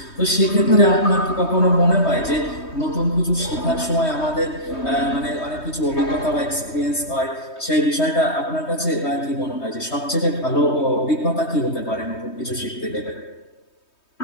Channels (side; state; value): right; late; 3.2 ms